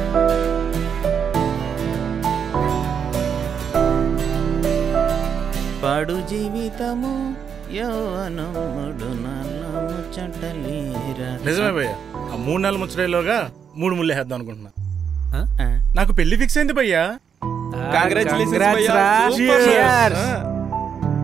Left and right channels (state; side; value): quieter; left; 7.4 dB